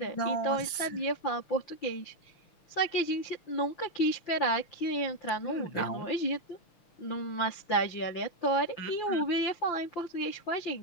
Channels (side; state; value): right; late; 6.0 ms